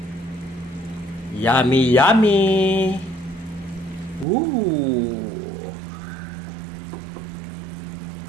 Yummy, yummy. Woo!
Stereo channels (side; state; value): left; drops out; at 4.2 s